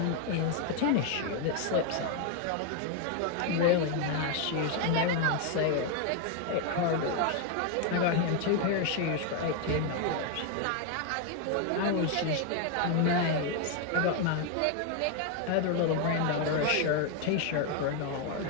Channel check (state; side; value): different; both; correlation 0.01